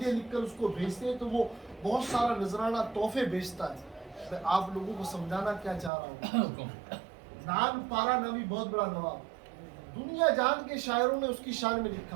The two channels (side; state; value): left; drops out; at 5.9 s